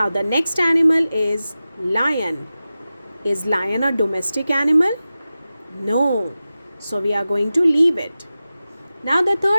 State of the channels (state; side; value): inverted; both; correlation -0.94